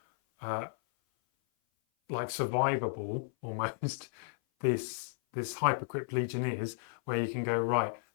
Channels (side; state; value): right; silent; 55 dB below the other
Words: like survivable almost this Hypercrypt Legion is, where you can go, right,